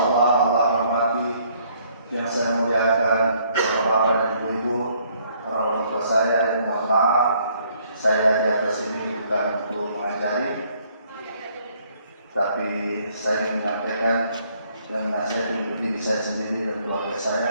rahmati, yang saya muliakan, bapak-bapak dan ibu-ibu, orang tua saya yang mohon maaf, saya di atas ini bukan untuk mengajari, tapi saya ingin menyampaikan dan menasihati untuk diri saya sendiri dan keluarga saya,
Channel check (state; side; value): inverted; both; correlation -0.65